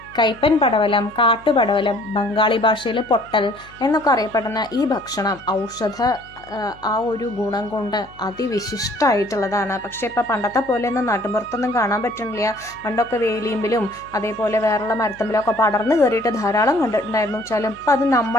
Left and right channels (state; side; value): noise; left; hum, 24 dB below the sound